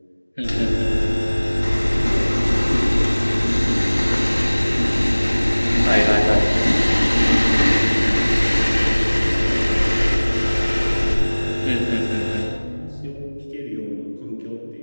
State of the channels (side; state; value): both; inverted; correlation -1.00